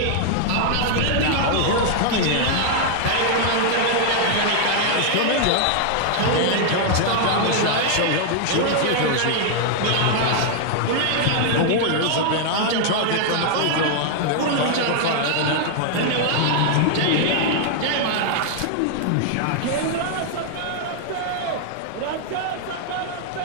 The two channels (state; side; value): different; both; correlation 0.00